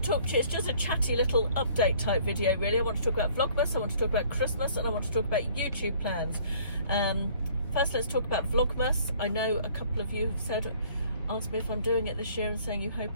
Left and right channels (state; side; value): inverted; both; correlation -0.56